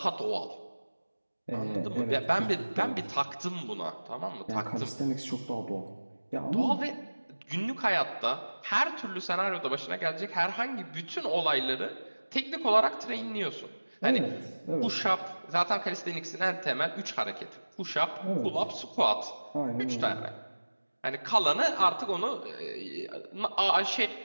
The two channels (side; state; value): both; inverted; correlation -1.00